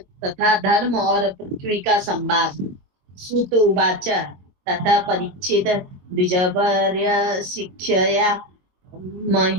तथा धर्म और पृथ्वी का संवाद। सूत उवाच तथा परीक्षित द्विजवर्य शिक्षया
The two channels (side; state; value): left; late; 22 ms